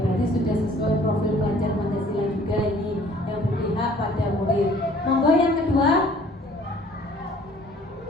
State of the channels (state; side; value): normal; both; correlation 0.54